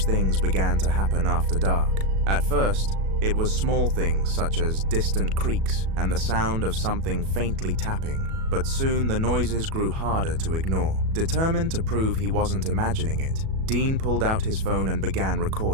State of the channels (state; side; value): late; left; 37 ms